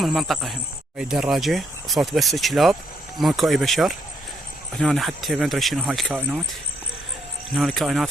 المنطقه هم. هاي الدراجه صوت بس كلاب، ماكو اي بشر. هنا حتى ما ادري شنو هاي الكائنات، هنا الكائنات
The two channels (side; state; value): both; normal; correlation 0.74